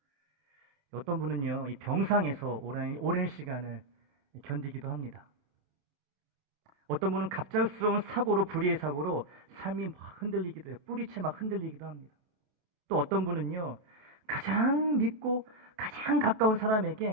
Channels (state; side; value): late; left; 28 ms